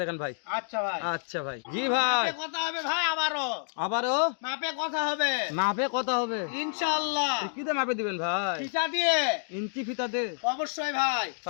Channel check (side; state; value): right; silent; digital silence